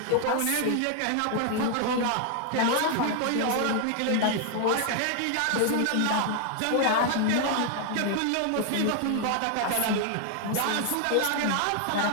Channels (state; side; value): different; both; correlation 0.00